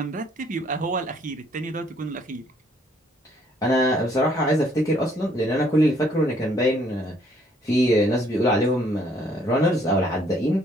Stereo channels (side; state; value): both; normal; correlation 0.65